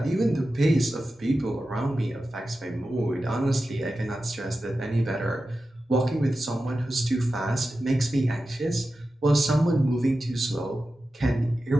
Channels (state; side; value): normal; both; correlation 0.93